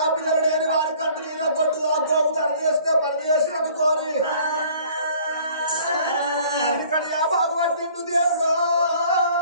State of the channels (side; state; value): both; inverted; correlation -0.54